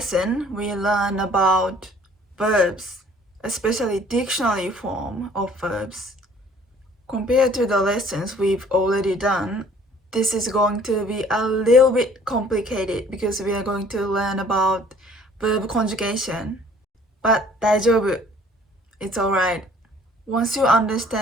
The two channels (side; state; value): both; normal; correlation 0.55